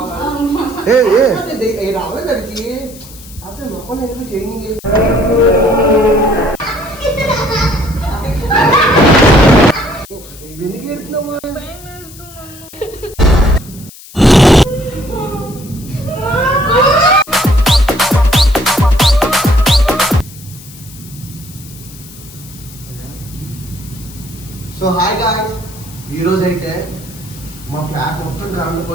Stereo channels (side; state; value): left; noise; hiss, 19 dB below the sound